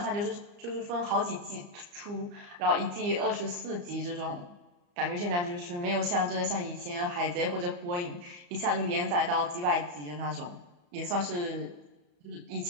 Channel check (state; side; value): late; left; 34 ms